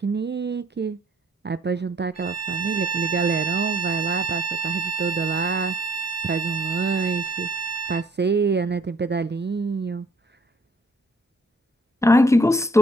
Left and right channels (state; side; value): normal; both; correlation 0.61